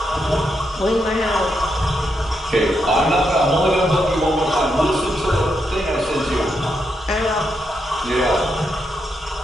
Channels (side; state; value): both; normal; correlation 0.81